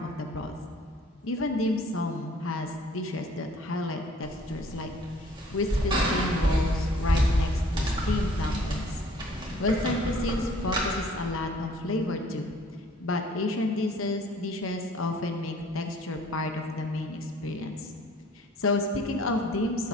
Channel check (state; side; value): normal; both; correlation 0.55